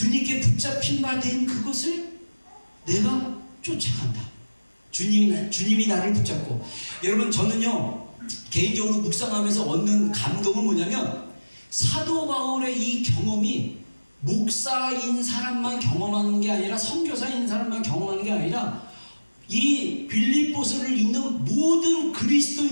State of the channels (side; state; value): both; inverted; correlation -1.00